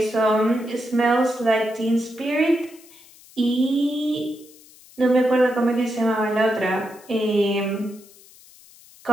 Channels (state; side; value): noise; left; hiss, 24 dB below the sound